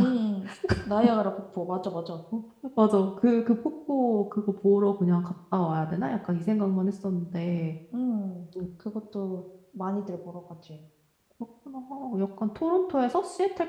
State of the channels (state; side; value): identical; both; correlation 1.00